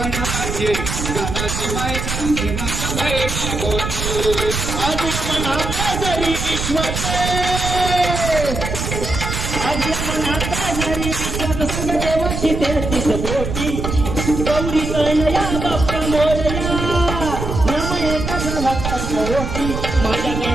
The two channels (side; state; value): right; noise; rumble, 4 dB below the sound